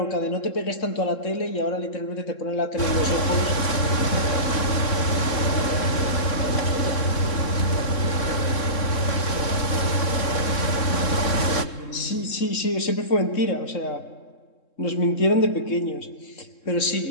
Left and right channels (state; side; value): late; right; 3.7 ms